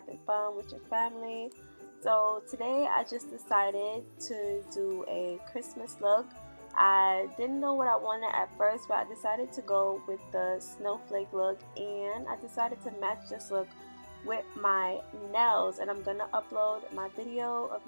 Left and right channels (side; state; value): both; inverted; correlation -1.00